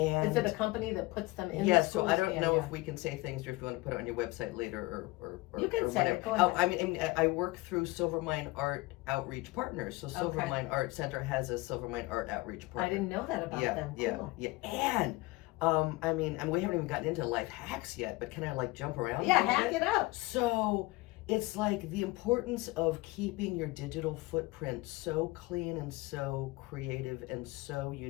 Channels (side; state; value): right; quieter; 21.9 dB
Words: is it a company that puts them in? Yeah, the schools? So I don't know if we can say things, or if you want to put it on your website later, or you can or say whatever. it. Go ahead. I mean, I work through Silvermine Art Outreach Partners. So Silvermine Art Center has a Silvermine Art Outreach Partner. I didn't know that about them. Cool. Yeah. And I mean, and we haven't even gotten into life hacks yet, but can I jump around? Yeah, hack it up. So it's like the importance of keeping your digital footprint so clean and so creative and so